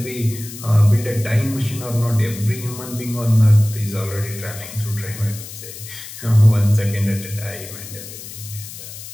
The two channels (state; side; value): noise; left; hiss, 13 dB below the sound